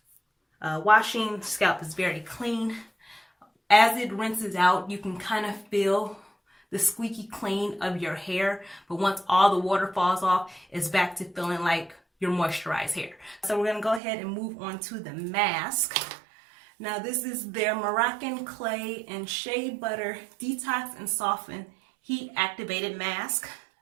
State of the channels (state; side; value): drops out; left; at 14.0 s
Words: washing. The scalp is very clean. As it rinses out, you can kind of feel the squeaky clean of your hair, but once all the water falls off, it's back to feeling like your moisturized hair. So we're gonna go ahead and move on to the mask. Now this is their Moroccan clay and shea butter detox and soften heat activated mask.